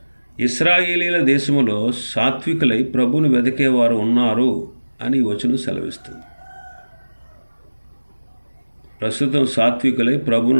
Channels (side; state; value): both; inverted; correlation -1.00